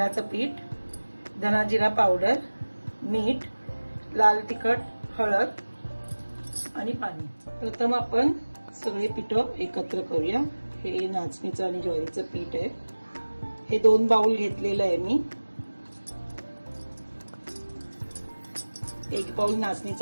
पीठ, धना जिरा पावडर, मीठ, लाल तिखट, हळद आणि पाणी। प्रथम आपण सगळे पीठ एकत्र करूया। हे नाचणीचं आणि ज्वारीचं पीठ आहे। हे 2 बाउल घेतलेलं आहे मी। 1 बाउल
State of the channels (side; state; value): both; inverted; correlation -1.00